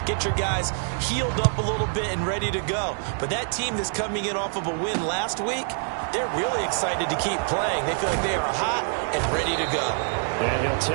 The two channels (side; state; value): left; silent; digital silence